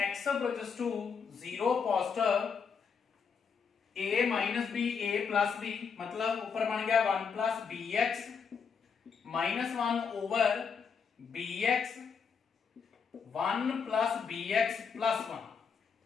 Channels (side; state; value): right; quieter; 6.1 dB